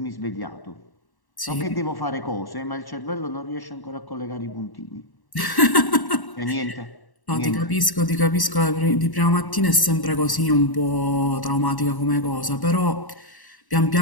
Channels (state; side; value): late; right; 1.1 ms